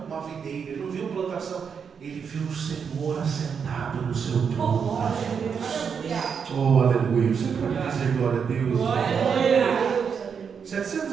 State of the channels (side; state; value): left; quieter; 6.6 dB